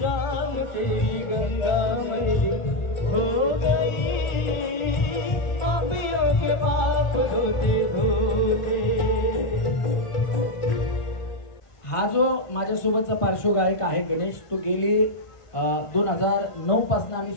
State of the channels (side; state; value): right; late; 1.4 ms